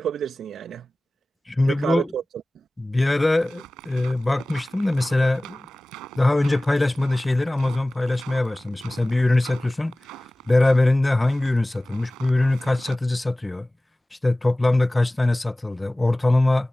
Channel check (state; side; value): normal; both; correlation 0.98